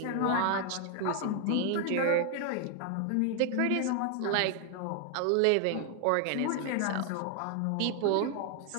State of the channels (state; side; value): different; both; correlation 0.00